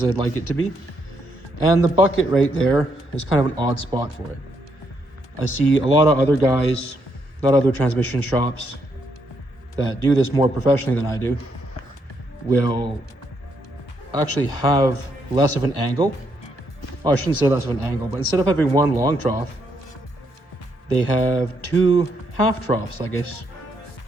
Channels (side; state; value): right; late; 1.3 ms